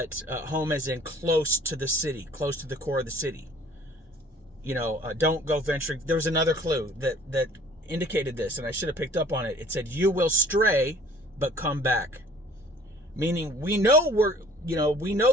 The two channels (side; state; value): both; normal; correlation 0.54